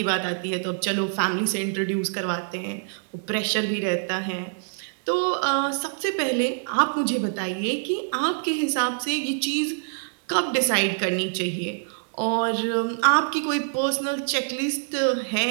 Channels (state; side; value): silent; left; digital silence